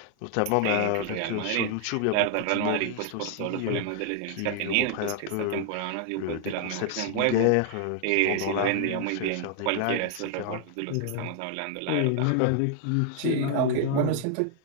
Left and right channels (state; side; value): different; both; correlation 0.00